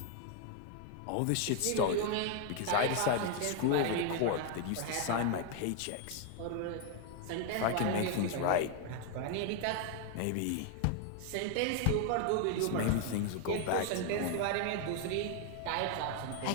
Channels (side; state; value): both; different; correlation 0.00